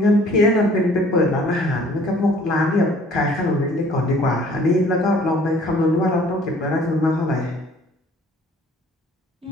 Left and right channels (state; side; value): normal; both; correlation 0.55